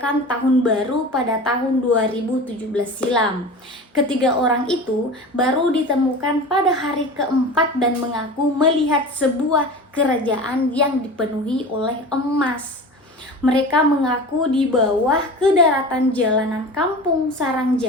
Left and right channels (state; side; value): normal; both; correlation 0.34